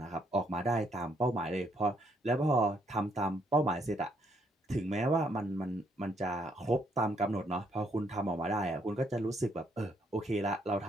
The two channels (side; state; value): both; normal; correlation 0.71